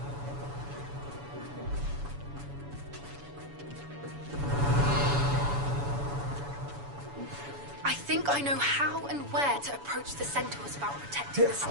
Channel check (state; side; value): late; left; 7.1 ms